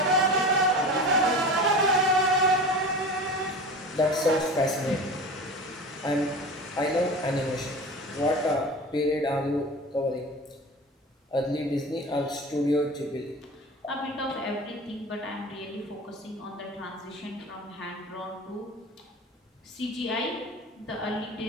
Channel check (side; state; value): both; normal; correlation 0.33